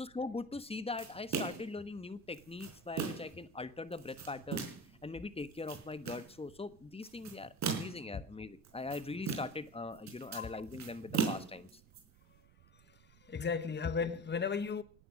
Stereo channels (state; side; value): noise; right; rumble, 24 dB below the sound